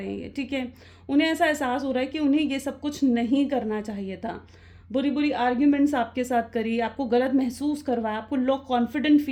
हैं, ठीक है। उन्हें ऐसा एहसास हो रहा है कि उन्हें ये सब कुछ नहीं करना चाहिए था, बुरी बुरी आर्ग्यूमेंट्स आपके साथ करी, आपको गलत महसूस करवाया, आपको लो कॉन्फिडेंट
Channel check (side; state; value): both; identical; correlation 1.00